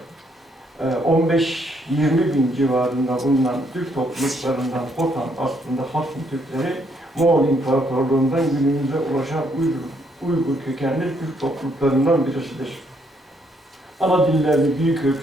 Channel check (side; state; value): both; normal; correlation 0.71